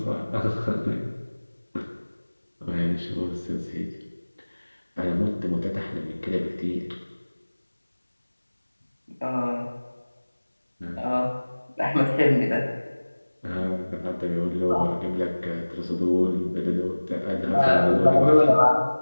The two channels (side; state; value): both; inverted; correlation -1.00